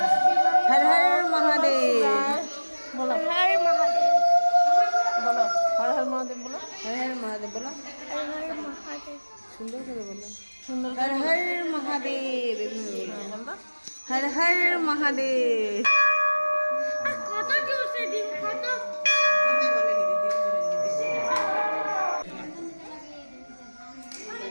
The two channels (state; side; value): inverted; both; correlation -1.00